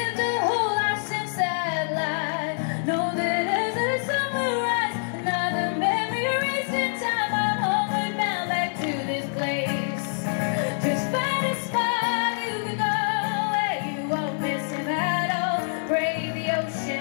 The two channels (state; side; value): silent; right; 61 dB below the other